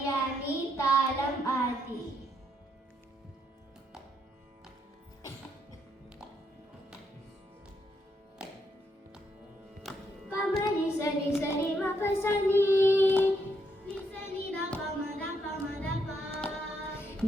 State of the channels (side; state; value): both; normal; correlation 0.76